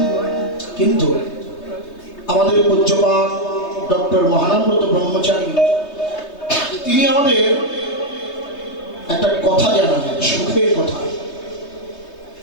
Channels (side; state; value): right; late; 3.2 ms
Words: কিন্তু আমাদের পূজ্যপাদ ডক্টর মহানব্রত ব্রহ্মচারী, তিনি আমাদের একটা কথা জানালেন, সুখের কথা,